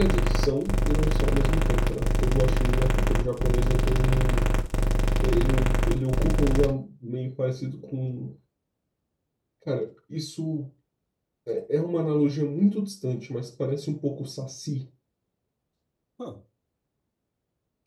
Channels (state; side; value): identical; both; correlation 1.00